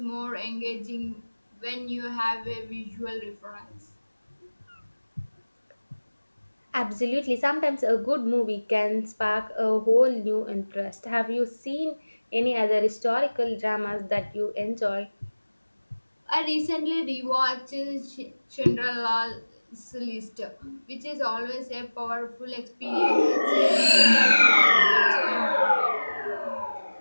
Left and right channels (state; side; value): inverted; both; correlation -1.00